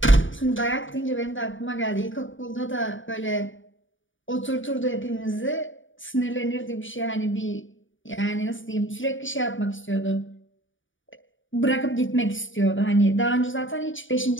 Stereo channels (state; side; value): late; right; 0.57 ms